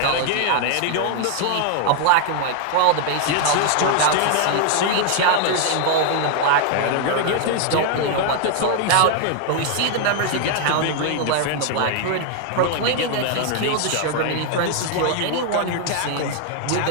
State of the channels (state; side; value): different; both; correlation 0.00